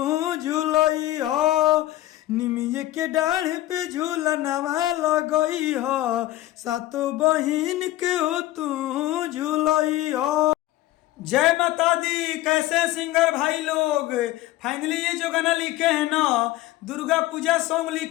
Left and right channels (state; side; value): quieter; right; 15.8 dB